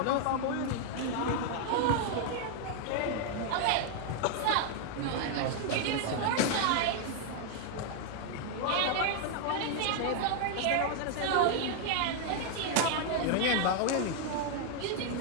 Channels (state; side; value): different; both; correlation 0.00